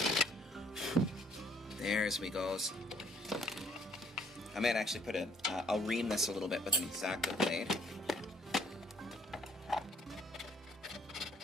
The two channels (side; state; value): both; normal; correlation 0.63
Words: There's we goes. I might actually put I'll ream this a little bit with an X-Acto blade.